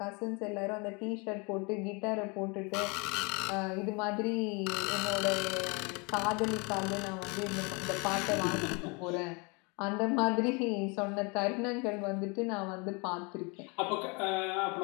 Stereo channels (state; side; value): quieter; right; 30.5 dB